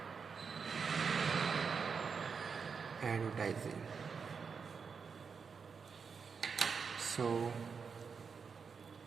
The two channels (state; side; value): quieter; left; 5.7 dB